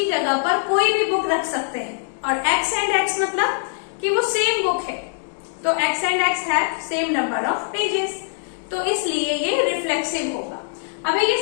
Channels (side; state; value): right; silent; digital silence